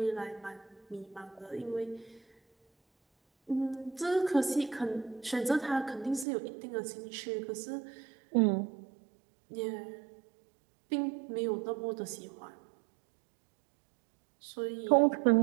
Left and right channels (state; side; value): drops out; left; at 6.2 s